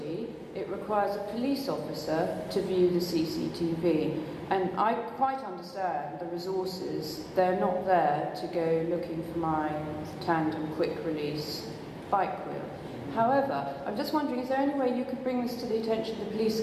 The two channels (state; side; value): identical; both; correlation 1.00